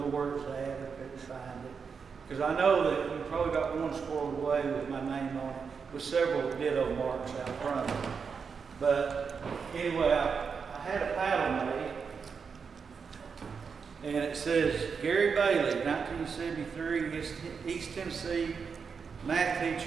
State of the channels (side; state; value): left; quieter; 5.8 dB